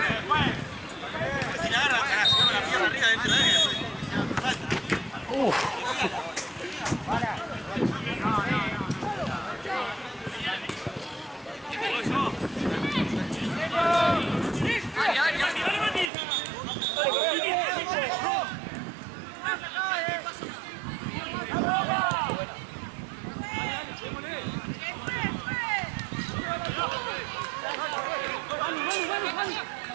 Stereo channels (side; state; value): left; drops out; at 16.1 s